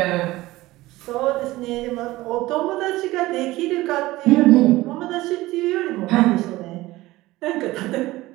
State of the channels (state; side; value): quieter; left; 18.2 dB